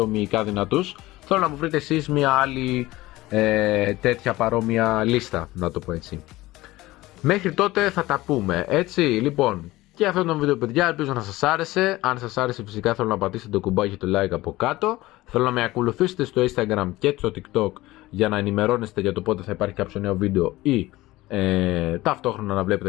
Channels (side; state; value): right; quieter; 18.4 dB